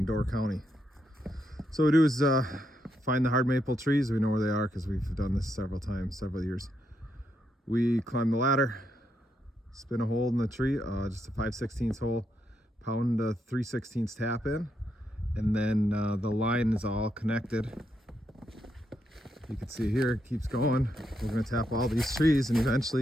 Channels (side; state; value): both; normal; correlation 0.80